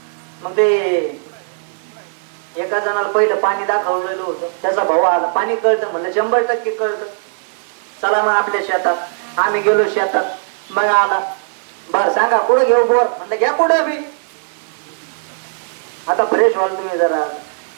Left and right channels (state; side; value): silent; left; digital silence